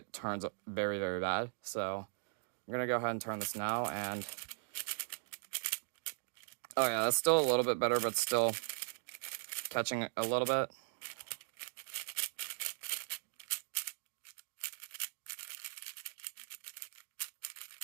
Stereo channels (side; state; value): left; silent; digital silence